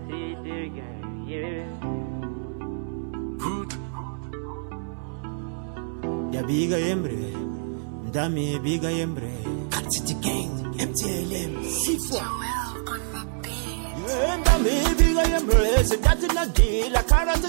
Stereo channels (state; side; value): silent; left; digital silence